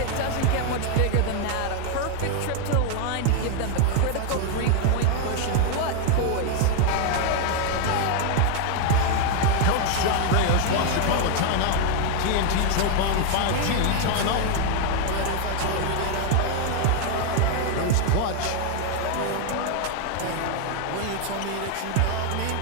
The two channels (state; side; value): different; both; correlation 0.01